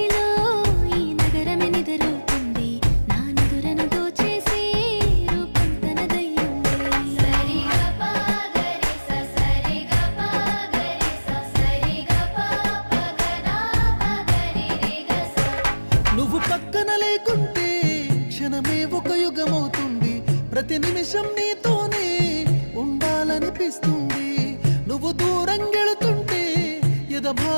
ఈ నగరమే నిద్రవుతుంది, నా నిదురను దోచేసి రూపం తనదయ్యింది. నువ్వు పక్కన లేకుంటే క్షణమే ఒక యుగమవుతుంది, ప్రతి నిమిషం నీతోనే ఉండాలనిపిస్తుంది. నువ్వు దూరం గెళుతుంటే ఎద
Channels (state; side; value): inverted; both; correlation -1.00